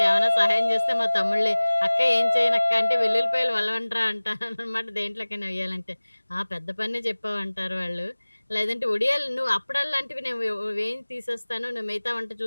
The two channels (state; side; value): inverted; both; correlation -1.00